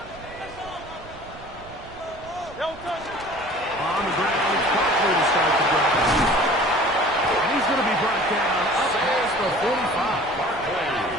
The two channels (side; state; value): right; noise; rumble, 19 dB below the sound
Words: the ground, it's Barkley to start the drive. And he's going to be brought down up past the 45.